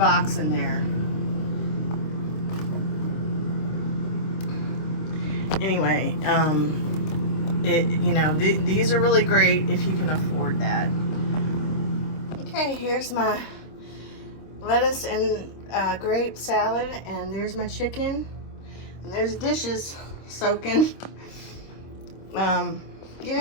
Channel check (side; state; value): right; late; 26 ms